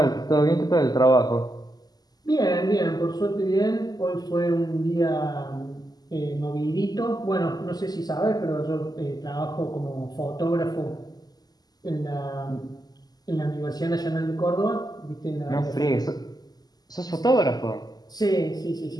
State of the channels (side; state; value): right; late; 0.19 ms